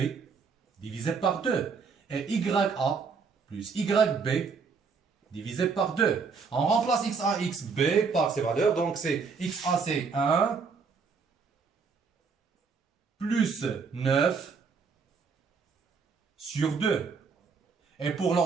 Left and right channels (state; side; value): quieter; left; 5.3 dB